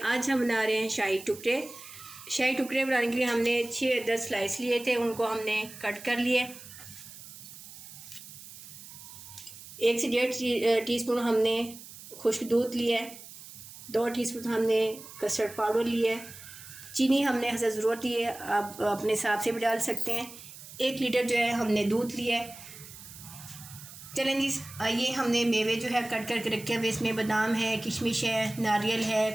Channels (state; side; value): noise; right; hiss, 16 dB below the sound